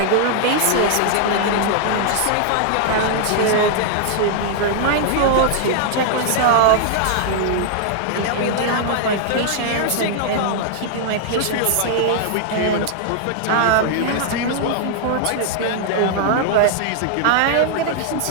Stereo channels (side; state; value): both; different; correlation -0.01